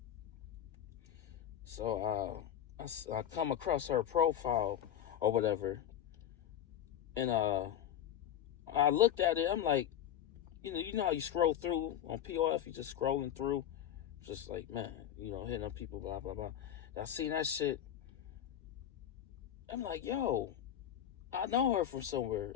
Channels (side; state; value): right; quieter; 10.5 dB